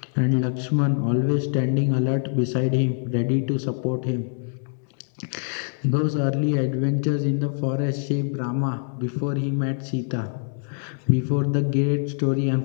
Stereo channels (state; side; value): silent; right; digital silence